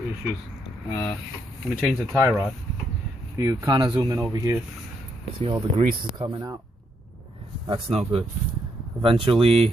issues. Let me change the tie rod. If you kind of zoom in over here, see all the grease is coming out. That's no good.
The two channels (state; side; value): normal; both; correlation 0.76